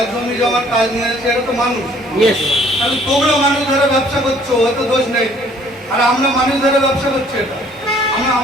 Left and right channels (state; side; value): normal; both; correlation 0.58